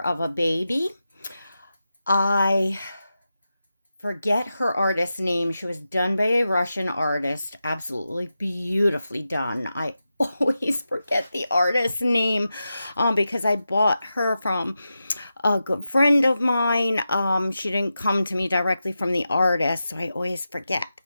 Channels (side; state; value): both; inverted; correlation -0.91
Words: a baby. I forget her artist name. She was done by a Russian artist. Absolutely beautifully done. I always forget the artist's name because I bought her from a good friend of mine. She didn't come to me directly from the artist, so I always forget.